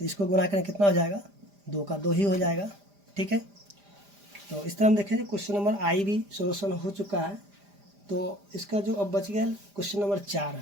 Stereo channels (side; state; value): left; late; 5.0 ms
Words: इसको गुना करें कितना हो जाएगा 2 का 2 ही हो जाएगा, ठीक है। तो इस तरह हम देखेंगे क्वेश्चन नंबर आई भी सोल्यूशन हो चुका है। तो इसका जो अब बच गया क्वेश्चन नंबर 4,